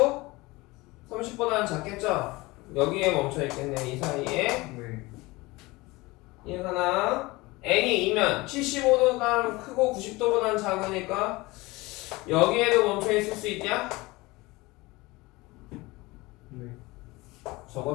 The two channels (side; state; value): right; quieter; 22.0 dB